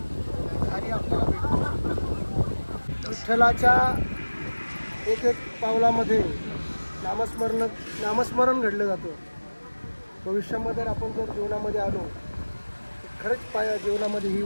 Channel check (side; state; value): both; inverted; correlation -1.00